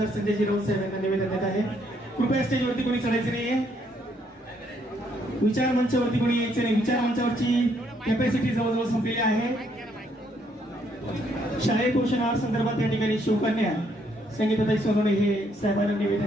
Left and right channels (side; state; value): both; normal; correlation 0.71